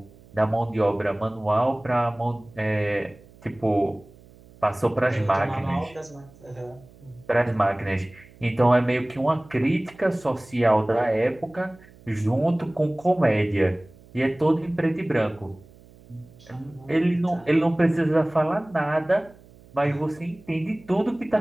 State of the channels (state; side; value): noise; right; hum, 24 dB below the sound